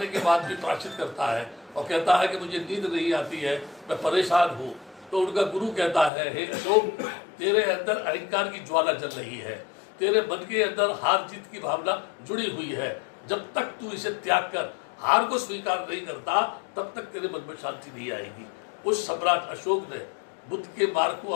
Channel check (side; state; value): right; drops out; at 6.1 s